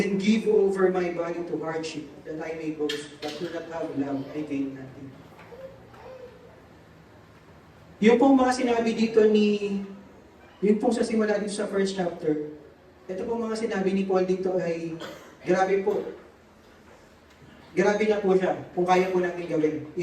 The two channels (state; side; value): identical; both; correlation 1.00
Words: give over my body to hardship, that I may boast, but do not have love, I gain nothing. Yung pong mga sinabi dito yung pong sa simula dito sa first chapter, ito pong mga sinabi ni Paul dito ay, grabe po. Grabe na po siya, kung kaya po natin gawin.